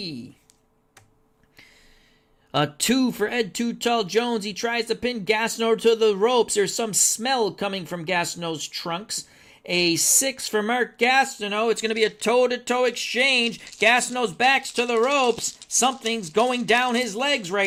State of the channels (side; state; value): both; identical; correlation 1.00